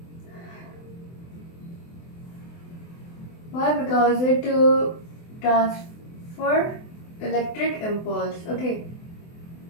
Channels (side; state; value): right; late; 24 ms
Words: Why? Because it transfer electric impulse, okay,